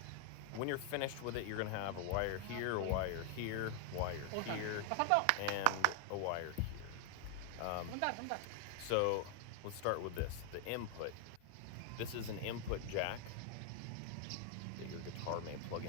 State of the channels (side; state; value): both; different; correlation 0.00